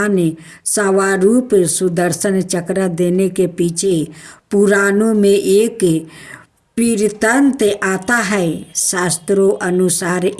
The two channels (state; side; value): identical; both; correlation 1.00